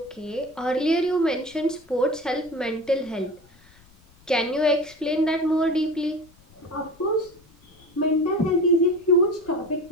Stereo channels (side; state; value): left; noise; rumble, 28 dB below the sound